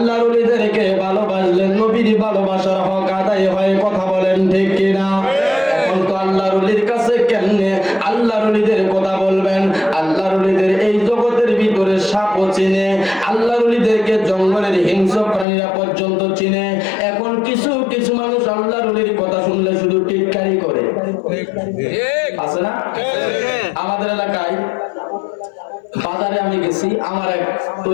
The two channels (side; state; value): right; drops out; at 15.5 s